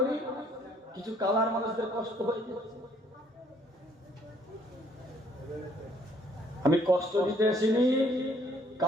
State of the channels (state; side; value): normal; both; correlation 0.63